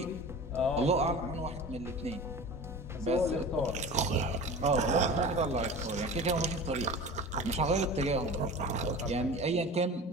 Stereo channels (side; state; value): both; normal; correlation 0.35